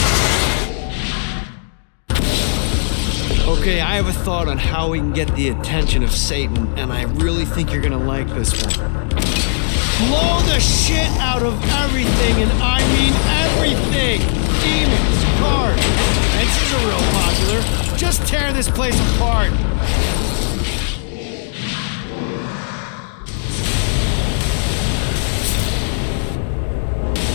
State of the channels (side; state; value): right; silent; digital silence